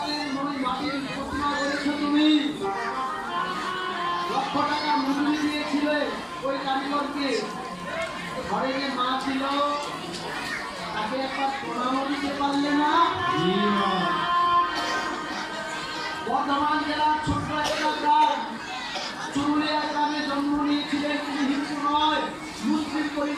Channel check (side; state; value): both; identical; correlation 1.00